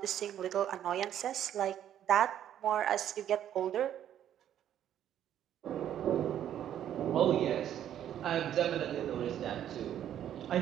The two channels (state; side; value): quieter; left; 10.6 dB